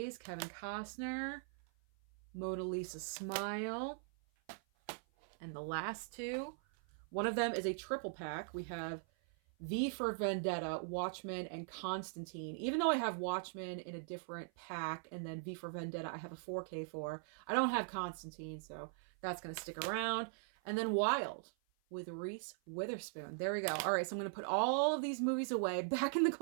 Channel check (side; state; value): left; silent; 51 dB below the other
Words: Kevin Costner. Mona Lisa Smile. And the last two, one of them is a triple pack. We have V for Vendetta, Watchmen, and Constantine. Even though I have Watchmen in a different pack, and then V for Vendetta I have a 4K for, I don't have Constantine, so that's going to stick around. And then Wild with Reese Witherspoon. There we go. All right, so I'm going to put all of these movies away, back in the